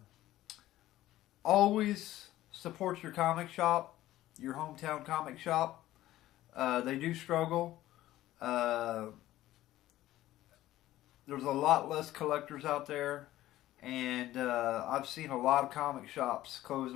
Always support your comic shop, your hometown comic shop. They do struggle. There's a lot less collectors out there. And I've seen a lot of comic shops close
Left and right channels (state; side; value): quieter; right; 15.0 dB